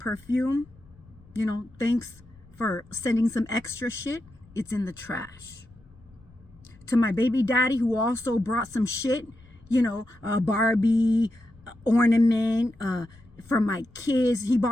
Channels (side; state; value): left; noise; rumble, 26 dB below the sound